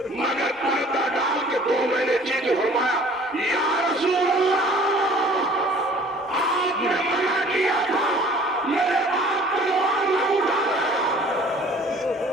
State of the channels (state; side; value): normal; both; correlation 0.51